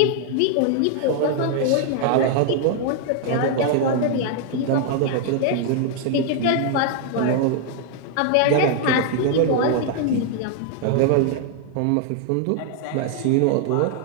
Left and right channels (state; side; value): different; both; correlation 0.00